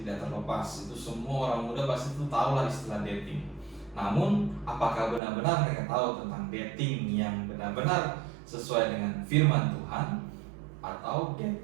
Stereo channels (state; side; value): drops out; left; at 5.2 s